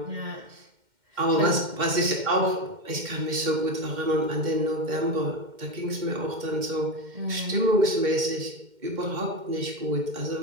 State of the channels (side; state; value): left; late; 2.1 ms